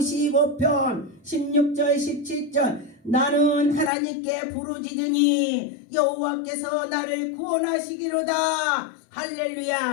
16절 17절 나는 하나님께 부르짖으니 여호와께서 나를 구원하시기로다.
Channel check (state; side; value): drops out; right; at 3.9 s